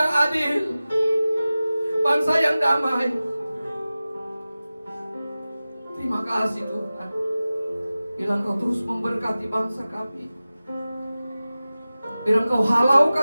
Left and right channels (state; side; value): inverted; both; correlation -0.96